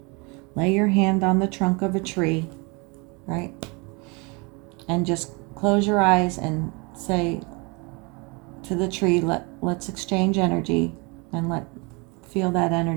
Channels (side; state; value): left; quieter; 29.5 dB